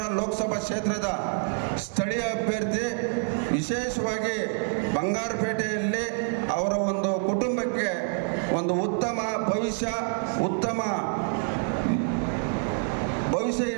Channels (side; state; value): left; silent; 56 dB below the other